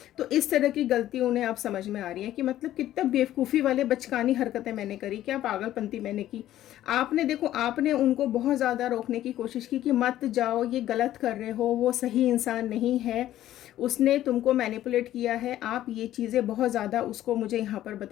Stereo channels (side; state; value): right; quieter; 13.2 dB